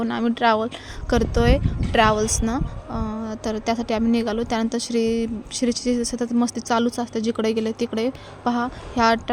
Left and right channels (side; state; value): both; identical; correlation 1.00